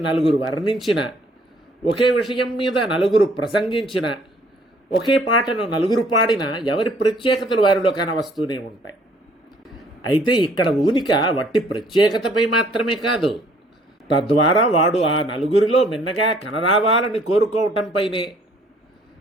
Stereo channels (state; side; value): normal; both; correlation 0.60